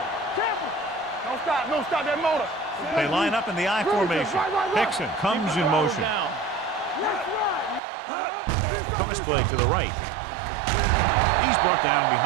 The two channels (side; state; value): left; drops out; at 7.8 s